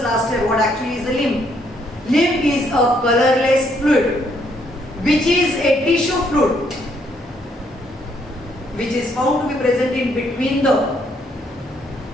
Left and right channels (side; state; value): both; normal; correlation 0.71